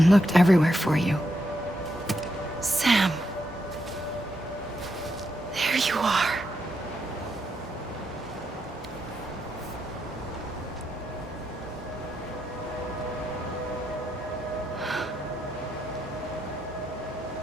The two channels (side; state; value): right; noise; hum, 17 dB below the sound